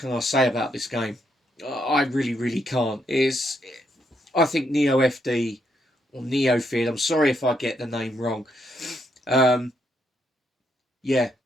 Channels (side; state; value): both; normal; correlation 0.77